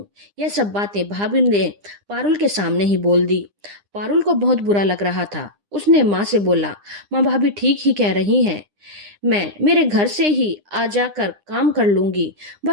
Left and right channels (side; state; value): left; late; 9.9 ms